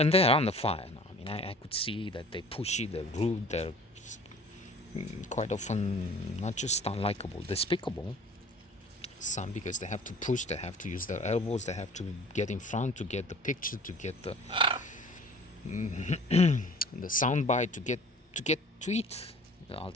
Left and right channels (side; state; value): both; normal; correlation 0.47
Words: they're on the fire now. I mean, I could see that they're pushy, they're rude, they're quite often not just unlikable, despicable. Some because they have to push, they have to use their elbows, they have to get in front to get the picture, to get the soundbite, to eat